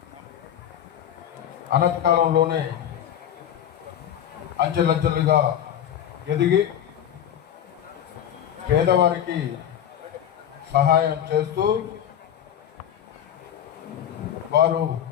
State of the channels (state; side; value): quieter; right; 10.0 dB